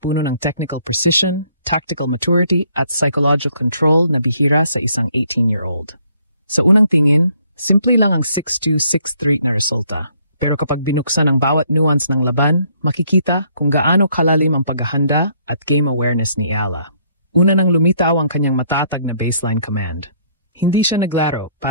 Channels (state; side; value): inverted; both; correlation -0.66